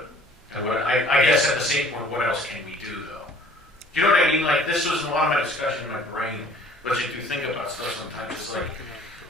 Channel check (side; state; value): both; normal; correlation 0.54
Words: and I guess at the same point, what else can we do, though? Do you know what I mean? Like, this was a lot of my discussion in my brain, but you do think about stuff sometimes. It's like,